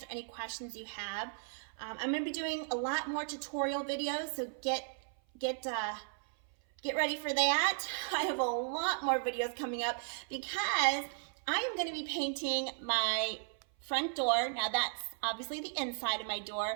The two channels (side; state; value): left; silent; 54 dB below the other